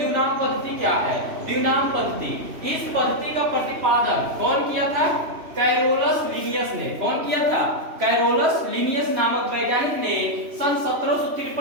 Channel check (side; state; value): left; late; 3.0 ms